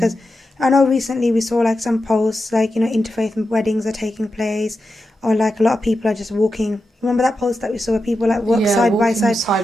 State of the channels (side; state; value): both; normal; correlation 0.89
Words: I know recently we saw some posts interfaith weddings are taking place, or a lot of people are just walking. Remember that post that we saw where people walk side by side